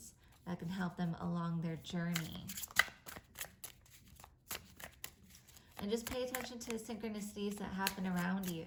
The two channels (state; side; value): identical; both; correlation 1.00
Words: that can help them along their journey. And just pay attention to the synchronicities that happen around you.